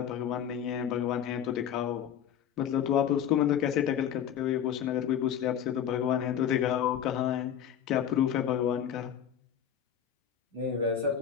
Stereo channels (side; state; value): right; quieter; 9.1 dB